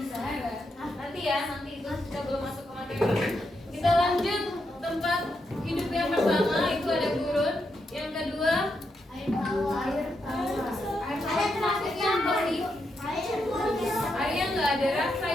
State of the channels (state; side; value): normal; both; correlation 0.83